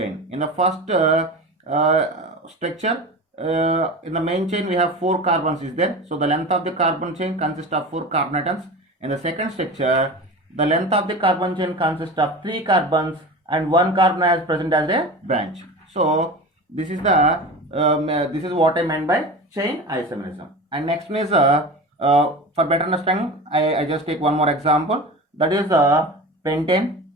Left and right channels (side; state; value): both; normal; correlation 0.31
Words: In the first structure, in the main chain we have 4 carbons is there. So the length of the carbon chain consists of 4 carbon atoms. In the second structure, the length of the carbon chain consists of 3 carbons and 1 carbon is present as a branch. So this is the this is what I meant by chain isomerism. And next one is for better understanding, I just take one more example. That is pentane.